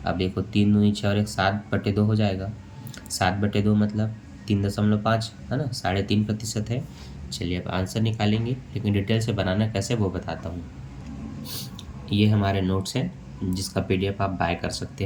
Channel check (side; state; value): both; identical; correlation 1.00